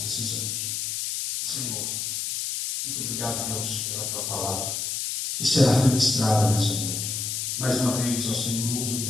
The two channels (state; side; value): noise; left; hiss, 2 dB below the sound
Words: precisamos. Senhor, muito obrigado, Deus, pela tua palavra que será ministrada nessa noite. Mais uma vez, ó Senhor, usa o